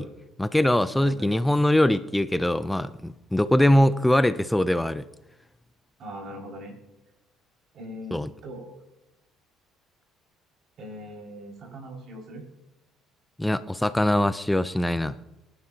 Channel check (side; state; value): both; normal; correlation 0.97